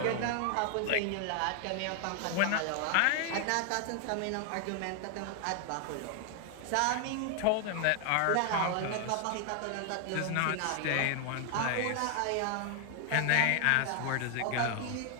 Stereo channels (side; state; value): both; different; correlation 0.00